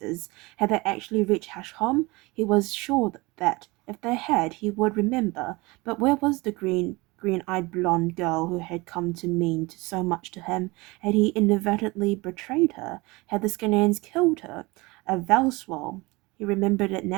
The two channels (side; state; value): left; quieter; 23.8 dB